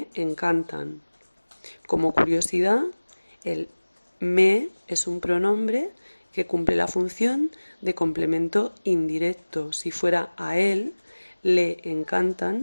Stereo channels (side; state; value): both; inverted; correlation -1.00